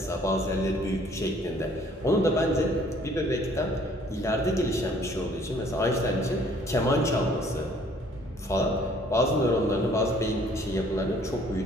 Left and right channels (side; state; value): both; normal; correlation 0.58